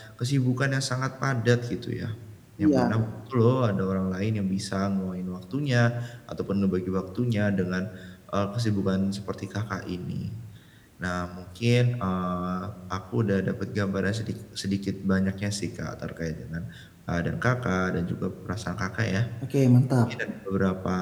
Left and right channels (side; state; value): both; identical; correlation 1.00